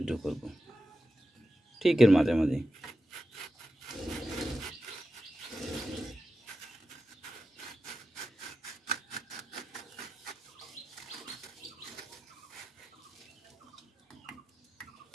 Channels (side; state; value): both; normal; correlation 0.91